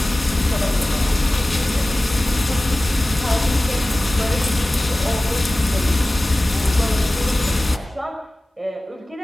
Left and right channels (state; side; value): normal; both; correlation 0.97